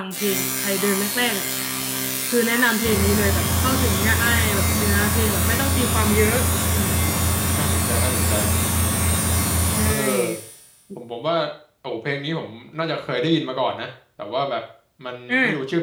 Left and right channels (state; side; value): identical; both; correlation 1.00